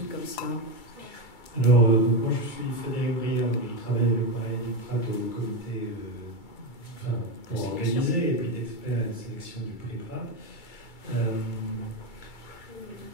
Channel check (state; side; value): late; right; 2.3 ms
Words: comme cela? Alors, moi je suis Frédéric Briand, je travaille avec Marie Prat au comité pour organiser et puis d'experts à la sélection du prix Prat.